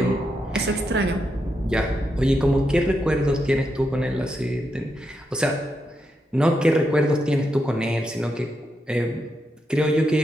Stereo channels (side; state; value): both; normal; correlation 0.83